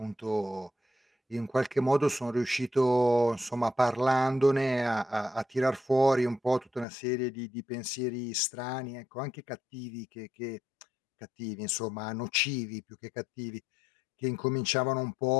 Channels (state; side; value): drops out; right; at 6.9 s